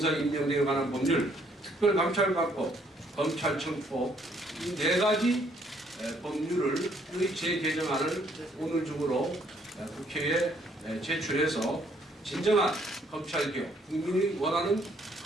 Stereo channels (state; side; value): normal; both; correlation 0.66